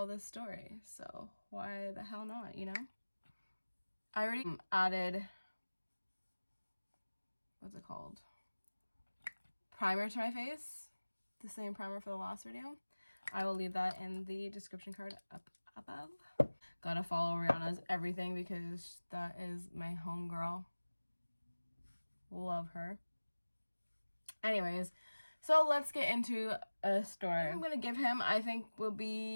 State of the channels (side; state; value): both; inverted; correlation -1.00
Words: this story. So why the hell not, you know? I already added, what's it called? Primer to my face. The same primer for the last video. I will leave that in the description card up above. Gotta follow Rihanna's everything because that is my homegirl. Love her. Anyways, so let's get into a story. I'm gonna give him, I think will